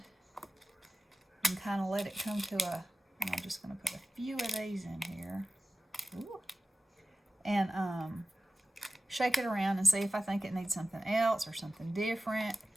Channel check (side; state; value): both; normal; correlation 0.95